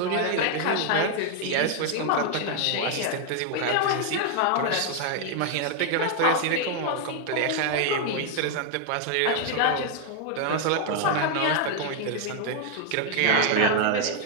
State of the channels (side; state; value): both; different; correlation 0.00